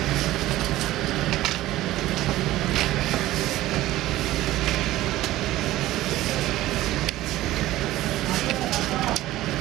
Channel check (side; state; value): left; quieter; 15.9 dB